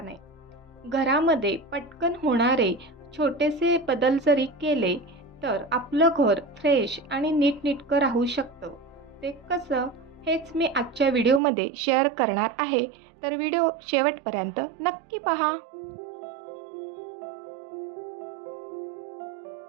नाही. घरामध्ये पटकन होणारे छोटेसे बदल जरी केले, तर आपलं घर फ्रेश आणि नीटनेटकं राहू शकतं. ते कसं? हेच मी आजच्या व्हिडिओमध्ये शेअर करणार आहे. तर व्हिडिओ शेवटपर्यंत नक्की पहा.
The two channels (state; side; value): drops out; left; at 11.4 s